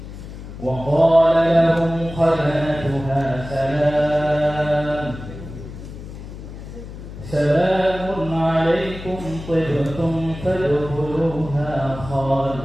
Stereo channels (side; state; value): left; noise; hum, 12 dB below the sound